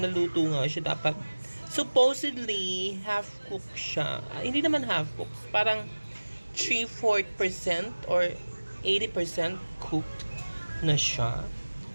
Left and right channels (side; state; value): both; inverted; correlation -1.00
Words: nga siya dapat. Supposedly half cooked siya. Hindi naman half cooked. Parang 3/4% or 80% cooked na siya.